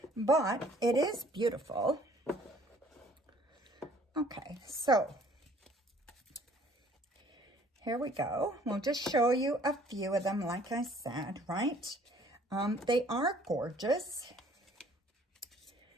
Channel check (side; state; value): both; normal; correlation 0.57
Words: but it is beautiful. Okay, so here we go. We'll just show you a few of them, like I said, right? They are gorgeous.